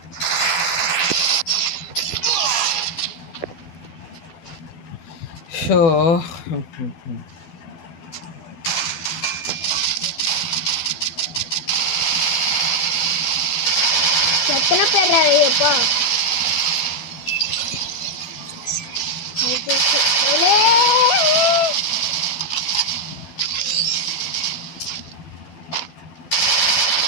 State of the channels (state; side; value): late; right; 12 ms